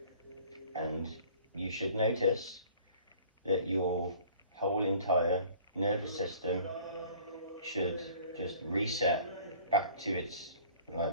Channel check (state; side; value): inverted; both; correlation -0.51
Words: And you should notice that your whole entire nervous system should just reset back to its